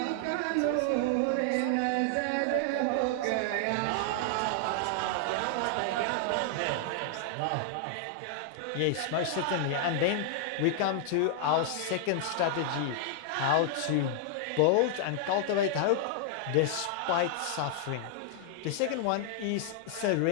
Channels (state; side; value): different; both; correlation -0.01